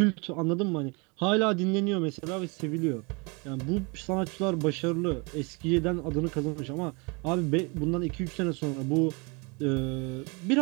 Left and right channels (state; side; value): quieter; left; 30.1 dB